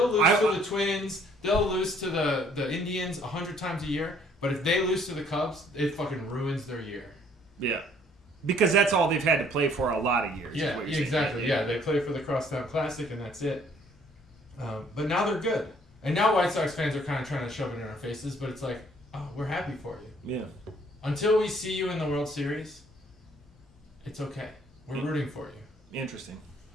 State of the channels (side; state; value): both; normal; correlation 0.61